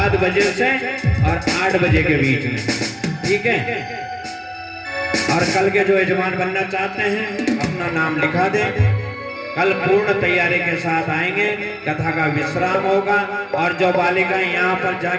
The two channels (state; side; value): identical; both; correlation 1.00